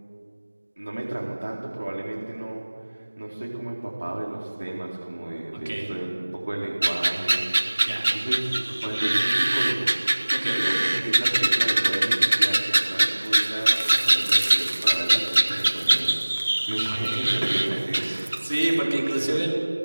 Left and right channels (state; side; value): inverted; both; correlation -1.00